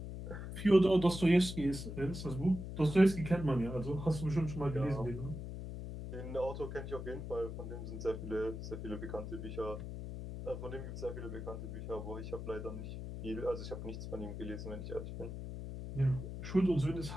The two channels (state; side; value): noise; left; hum, 7 dB below the sound